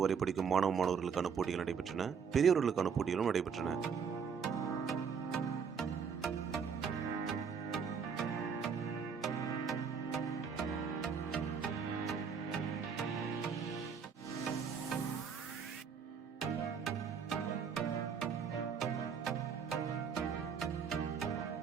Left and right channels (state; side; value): quieter; left; 6.5 dB